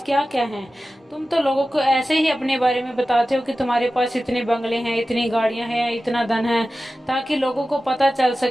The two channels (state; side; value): normal; both; correlation 0.95